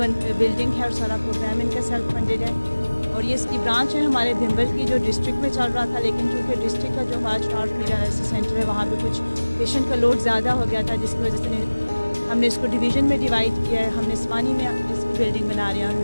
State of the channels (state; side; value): inverted; both; correlation -1.00